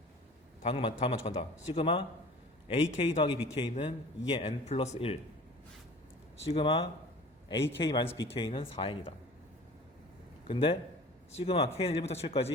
다음 맞춰간다. 시그마 ak 더하기 bk는 2의 n 플러스 1, 시그마 ak 마이너스 bk는 4n이다. 근데 시그마 k는 1부터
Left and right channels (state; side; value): normal; both; correlation 0.43